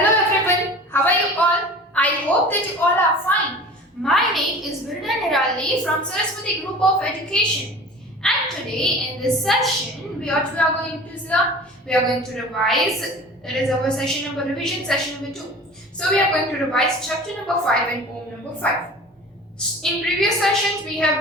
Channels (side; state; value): both; normal; correlation 0.40